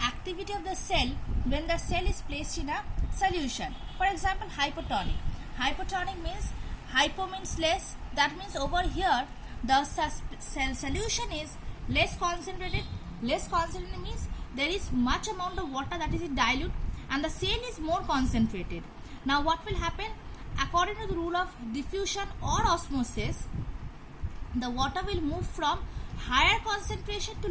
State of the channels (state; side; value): identical; both; correlation 1.00